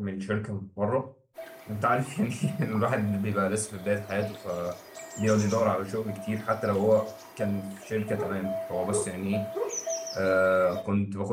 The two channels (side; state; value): both; identical; correlation 1.00